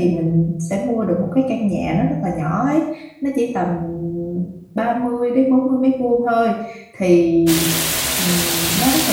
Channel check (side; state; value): both; identical; correlation 1.00